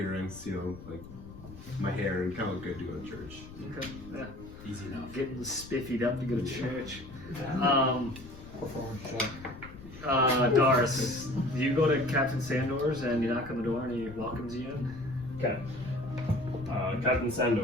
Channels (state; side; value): noise; left; rumble, 15 dB below the sound